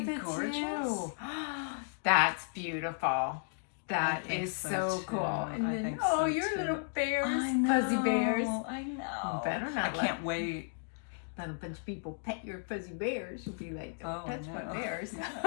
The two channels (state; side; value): silent; right; digital silence